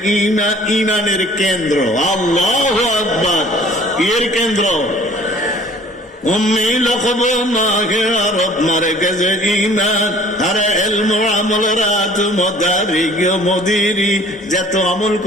ঈমান, ঈমানের কেন্দ্র। আল্লাহু আকবার, এর কেন্দ্র। উম্মি লকব মাগে আরব মারকেজে ঈমান, আরে ইলম আমল রাত মদারিগ মদিরি, যত আমল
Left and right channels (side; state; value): both; normal; correlation 0.51